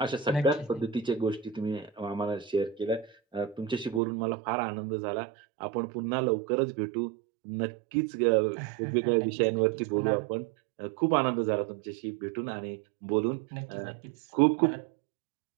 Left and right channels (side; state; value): left; drops out; at 4.0 s